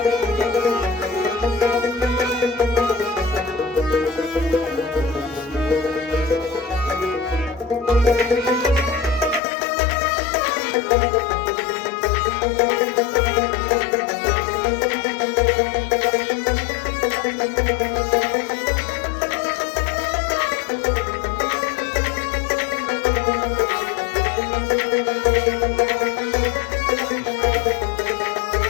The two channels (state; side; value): drops out; right; at 9.4 s